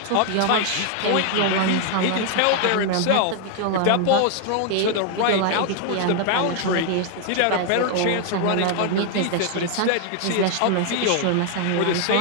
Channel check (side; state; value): both; different; correlation 0.00